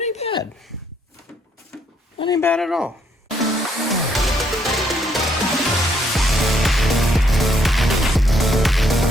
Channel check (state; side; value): normal; both; correlation 0.71